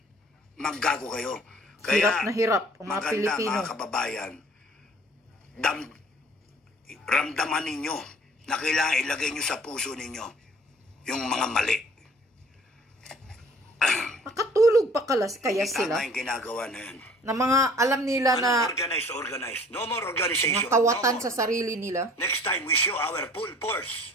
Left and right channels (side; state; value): both; normal; correlation 0.52